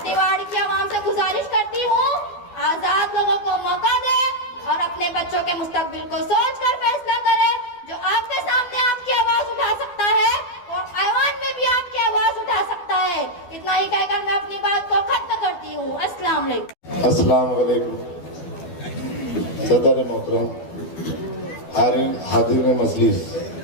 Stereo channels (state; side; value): late; right; 12 ms